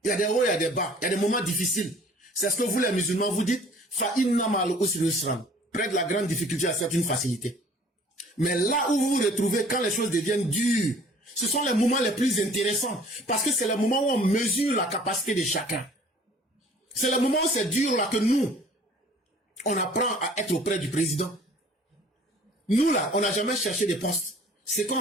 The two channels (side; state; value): both; normal; correlation 0.52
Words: Il y a des hauts, il y a des bas. Il y a des moments difficiles. C'est ce que vous, les musulmans, vous dites. Près de la grande difficulté, c'est une facilité. Mais là où vous vous retrouvez, quand les choses deviennent dures, ce sont les moments les plus intéressants. Parce que c'est le moment où on mesure la capacité de chacun. C'est le moment où c'est dur là que nous, on apprend à être auprès du président. Nous là, on n'a jamais cherché des postes. Ce